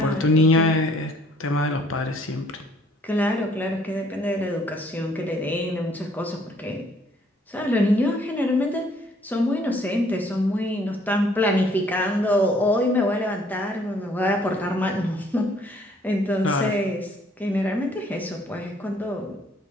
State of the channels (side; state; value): both; normal; correlation 0.62